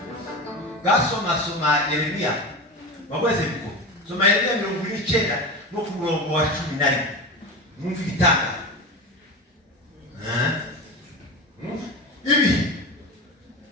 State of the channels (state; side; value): normal; both; correlation 0.25